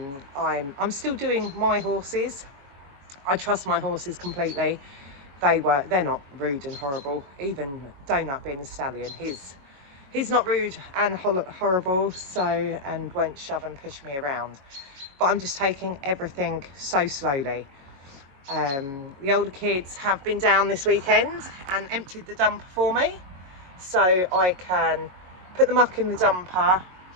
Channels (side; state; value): left; late; 22 ms